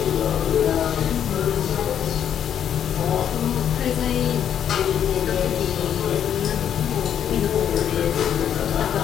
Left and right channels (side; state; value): right; quieter; 9.3 dB